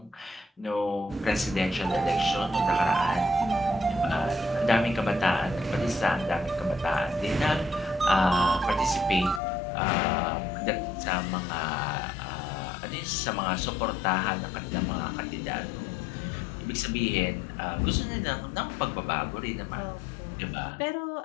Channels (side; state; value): right; drops out; at 9.4 s